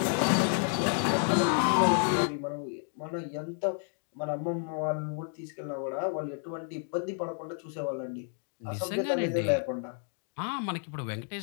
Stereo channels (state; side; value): silent; right; 57 dB below the other